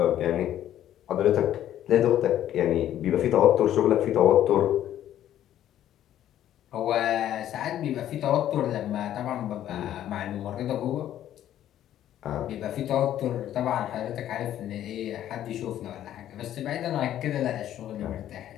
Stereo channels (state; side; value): quieter; right; 11.7 dB